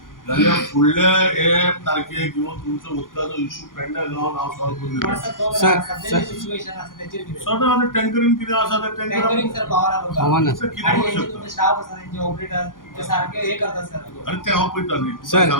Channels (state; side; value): late; right; 0.90 ms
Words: जाल्यार फुडल्या हे तारखेक येवन तुमचो उदकाचो इशू पेडण्या गांवांत हांव सॉल्व करून दिता सदां आतां टँकरीन कितें आसा ते टँकर आव्हान कितें करूंक शकता आनी ते हांव पळयता न्ही